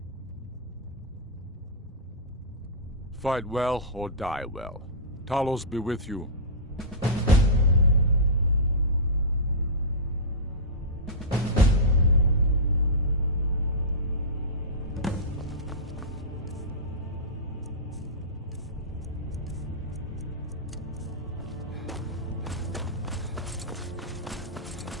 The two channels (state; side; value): normal; both; correlation -0.16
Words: Fight well or die well. Talos be with you.